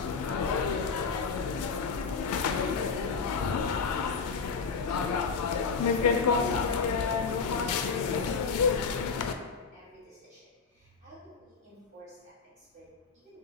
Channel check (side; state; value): right; quieter; 5.2 dB